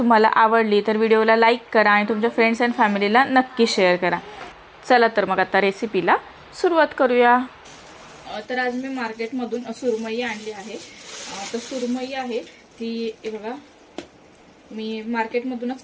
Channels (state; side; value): identical; both; correlation 1.00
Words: आवडली तर व्हिडिओला लाईक करा आणि तुमच्या फ्रेंड्स अँड फॅमिलीला नक्की शेअर करा। चला तर मग आता रेसिपीला सुरुवात करूया। तर आज मी मार्केटमधून सुरमई आणली आहे। तर सुरमई आहे ती बघा मी मार्केटमधूनच